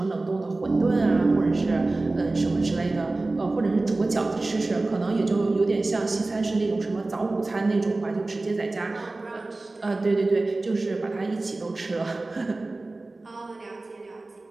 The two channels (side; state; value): left; quieter; 3.1 dB